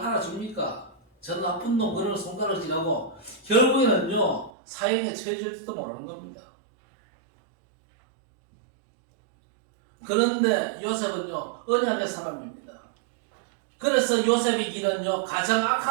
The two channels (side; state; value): left; drops out; at 4.5 s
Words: 저 나쁜 놈 그런 손가락을 쥐라고 결국에는요 사형에 처해질지도 모르는 겁니다. 그런데 요셉은요 언약의 사람입니다. 그래서 요셉의 길은요 가장